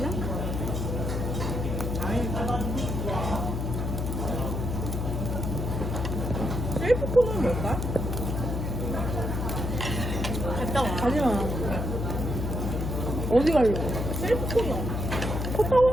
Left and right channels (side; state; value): left; noise; hum, 2 dB below the sound